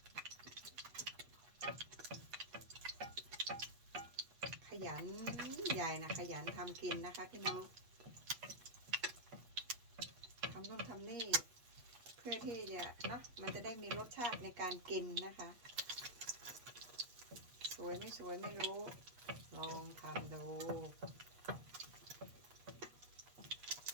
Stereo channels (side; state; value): left; late; 8.3 ms